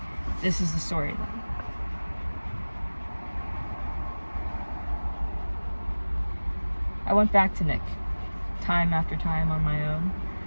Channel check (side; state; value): both; inverted; correlation -1.00